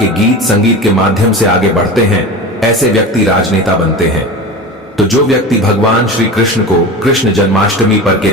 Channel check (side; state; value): both; normal; correlation 0.30